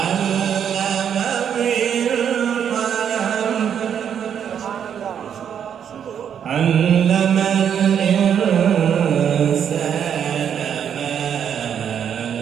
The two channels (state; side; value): quieter; left; 8.4 dB